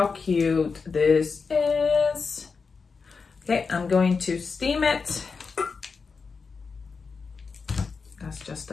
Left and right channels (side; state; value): right; quieter; 5.0 dB